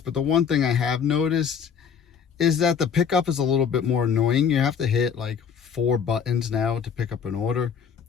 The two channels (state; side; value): quieter; right; 7.1 dB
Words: the one thing I have noticed is that the pickup is a little bit more annoying. You have to hit like 4 buttons now to pick up an order.